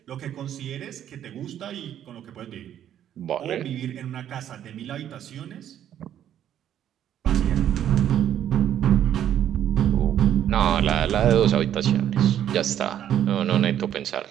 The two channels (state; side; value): quieter; left; 10.6 dB